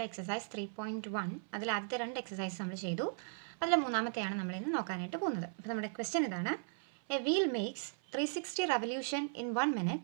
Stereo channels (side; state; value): left; silent; 53 dB below the other